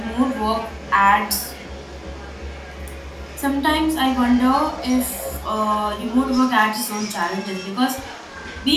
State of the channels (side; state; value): both; identical; correlation 1.00